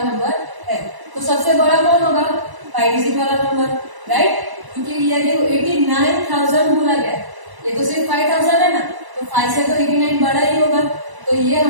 है। तो सबसे बड़ा कौन होगा? 5 डिजिट वाला नंबर, राइट? क्योंकि ये देखो 89,000 बोला गया है, ये तो सिर्फ 5,000 है ना, तो 5 से तो 89 बड़ा ही होगा। तो ये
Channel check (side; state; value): left; late; 1.0 ms